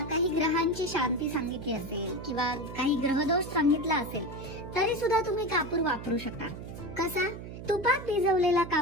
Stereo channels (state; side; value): noise; right; hum, 11 dB below the sound